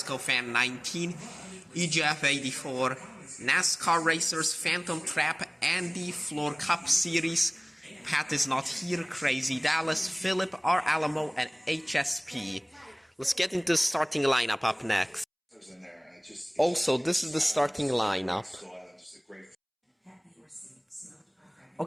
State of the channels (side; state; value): both; identical; correlation 1.00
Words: Fan 19, EGF 84, NASCAR Racers Phantom Trap, Andy Floor Cup Series, Pat is not here, Crazy Dallas, Philip, R. Alamo, and HSP. Let's get into the starting lineup up next. Also, this is the starting lineup.